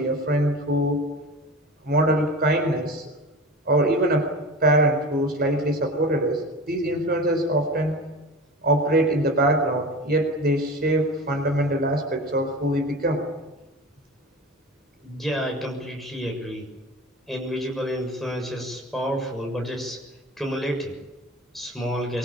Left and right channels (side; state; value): both; normal; correlation 0.33